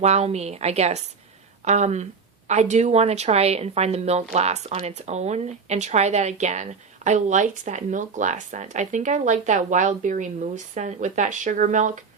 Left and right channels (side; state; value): left; quieter; 5.3 dB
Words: wow me, I guess. I do want to try and find the milk glass on its own and try that again. I liked that milk glass scent. I think I liked that wild berry mousse scent with that sugar milk.